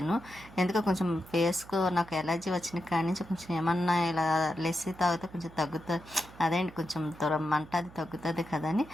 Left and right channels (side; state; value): right; noise; hum, 20 dB below the sound